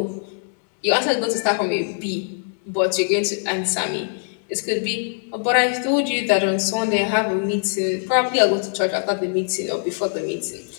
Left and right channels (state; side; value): silent; right; 64 dB below the other